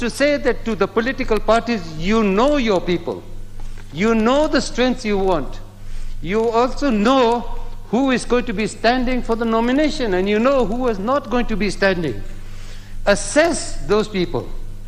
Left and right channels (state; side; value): identical; both; correlation 1.00